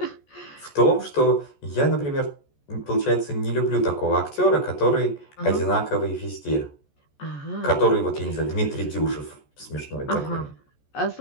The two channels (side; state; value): right; late; 14 ms